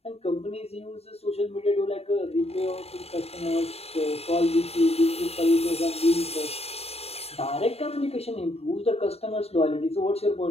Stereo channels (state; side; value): late; right; 0.29 ms